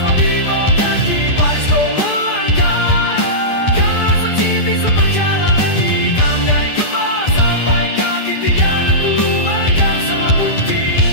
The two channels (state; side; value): late; right; 10 ms